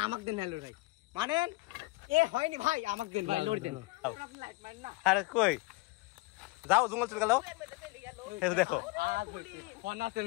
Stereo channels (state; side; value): quieter; right; 23.0 dB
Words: আমাকে দেন। হ্যালো ভাই মারেন। এ হয়নি ভাই, আমাকে দেন ভাই, লড় দেন। আরে কই যাও, জঙ্গল চলে গেল। দেখো ফোন আছে